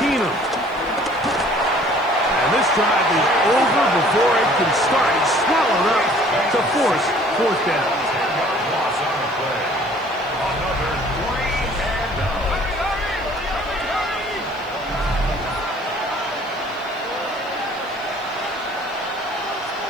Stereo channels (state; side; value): noise; left; hiss, 29 dB below the sound